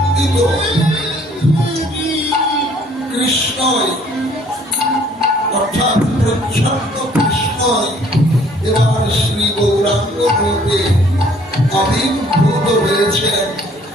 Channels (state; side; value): normal; both; correlation 0.59